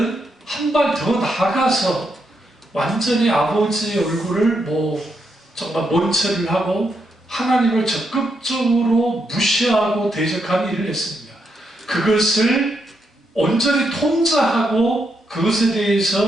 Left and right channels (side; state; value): both; normal; correlation 0.80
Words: 한 발 더 나아가서 완전히 아버지의 얼굴을 정말 먼체를 하고 하나님을 적극적으로 무시하고 대적하는 일을 했습니다. 그것을 온전히 통제하고 그것에